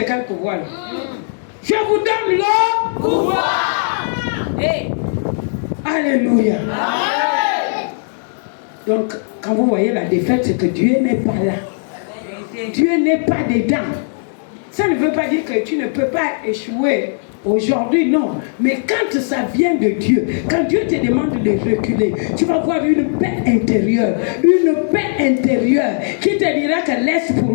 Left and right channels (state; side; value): silent; right; digital silence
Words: quel pouvoir? Je vous donne le pouvoir. Hey. Alléluia. Amen. Donc, quand vous voyez la défaite, c'est que Dieu n'est pas là. Dieu n'est pas dedans. Ça ne veut pas dire que tu ne peux pas échouer aujourd'hui, non. Mais quand ça vient de Dieu, quand Dieu te demande de reculer, tu vas voir une paix intérieure. Une paix intérieure qui te dira que laisse